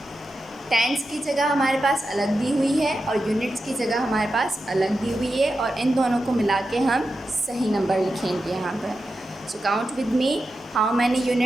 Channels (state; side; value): normal; both; correlation 0.90